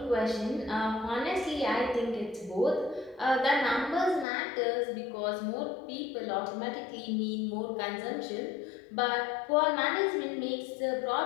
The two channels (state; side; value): drops out; right; at 4.2 s